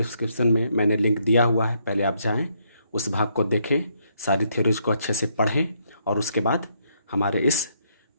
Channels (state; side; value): inverted; both; correlation -0.73